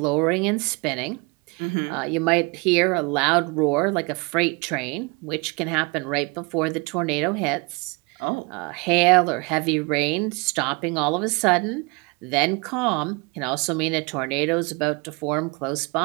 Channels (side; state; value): left; quieter; 28.9 dB